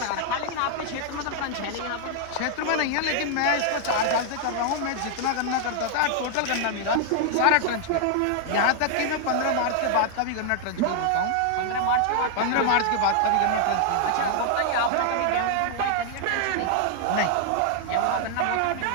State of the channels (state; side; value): different; both; correlation 0.00